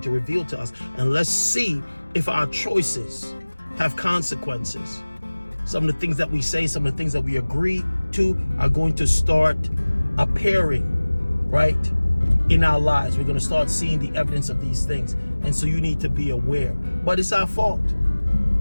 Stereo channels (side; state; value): both; inverted; correlation -1.00